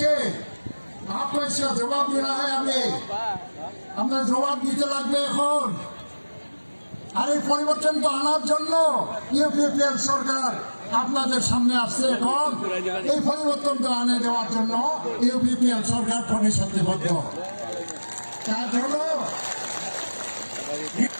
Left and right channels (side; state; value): both; inverted; correlation -1.00